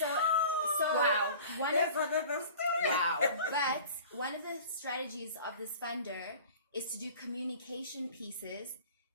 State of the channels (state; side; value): inverted; both; correlation -0.43